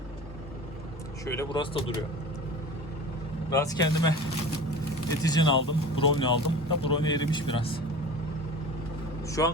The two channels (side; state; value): both; normal; correlation 0.37